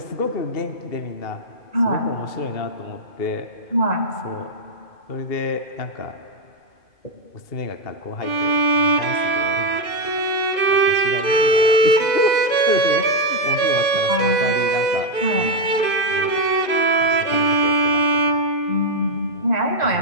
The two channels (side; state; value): right; late; 2.5 ms